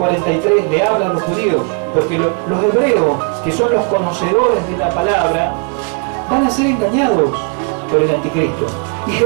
le habla a los judíos, porque los hebreos, que son los conocedores de la palabra, van a ser engañados por el anticristo. Y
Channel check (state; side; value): quieter; left; 35.4 dB